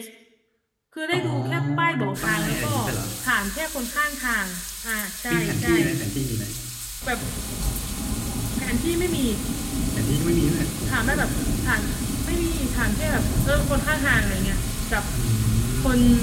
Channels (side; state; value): both; identical; correlation 1.00